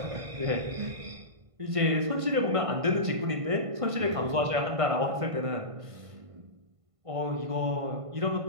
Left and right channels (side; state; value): left; late; 1.5 ms